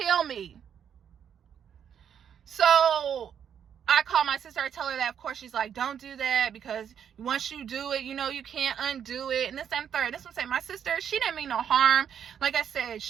me. So I call my sister, I tell her that. Of course, she's like, don't do that, because once you do it, you know, you can't undo it. And this and third. This one say, my sister, she didn't mean no harm. Like I said,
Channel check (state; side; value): quieter; left; 8.4 dB